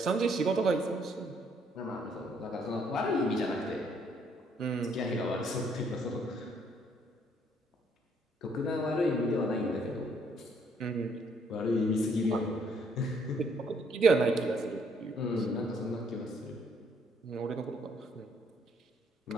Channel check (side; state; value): both; normal; correlation 0.68